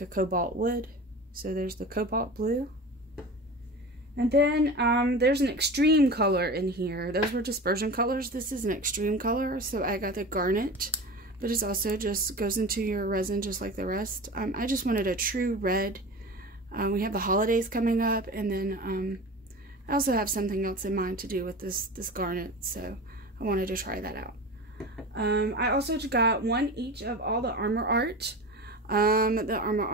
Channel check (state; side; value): normal; both; correlation 0.32